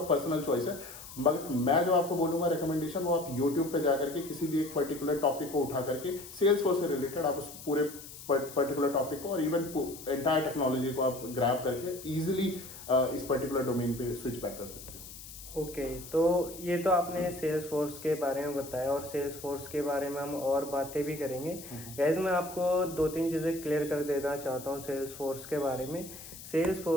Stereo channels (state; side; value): noise; left; hiss, 14 dB below the sound